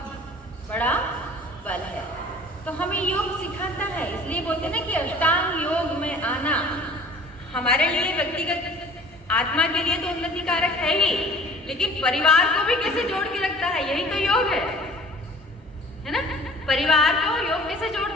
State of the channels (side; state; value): both; normal; correlation 0.48